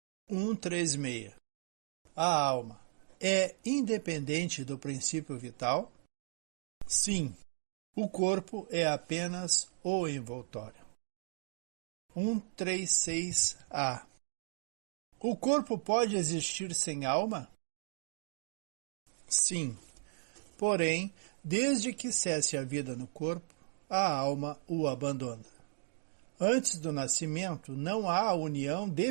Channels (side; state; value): left; silent; digital silence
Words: 136. A alma é independente do princípio vital? Sim, o corpo é apenas o envoltório. 136a. O corpo pode existir sem alma? Sim, porém, desde que cesse a vida no corpo, a alma o abandona. Antes do nascimento, não há união